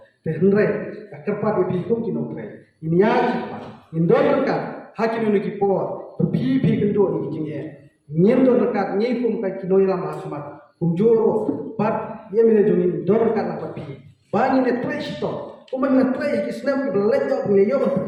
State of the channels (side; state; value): both; identical; correlation 1.00